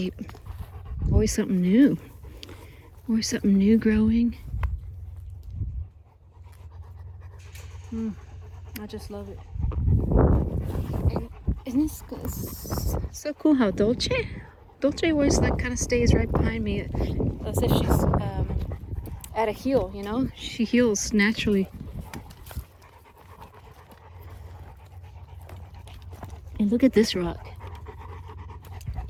Always something new. Always something new growing. I just love it. And isn't this so cool how Dolce always like kind of stays right behind me as if she's at a heel, you know? She heals naturally. And look at this rock.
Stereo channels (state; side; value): identical; both; correlation 1.00